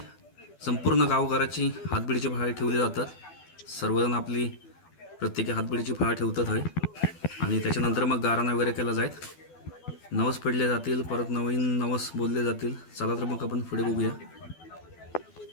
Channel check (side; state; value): right; late; 12 ms